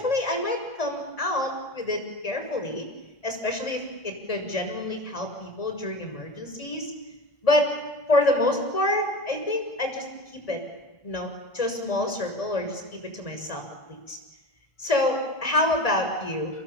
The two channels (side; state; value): right; late; 1.7 ms